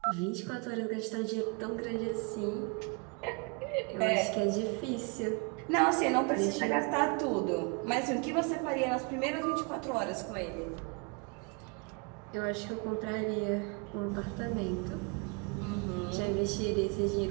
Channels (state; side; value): quieter; left; 32.8 dB